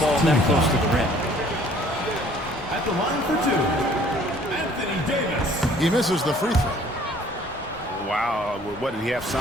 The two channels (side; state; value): both; normal; correlation 0.56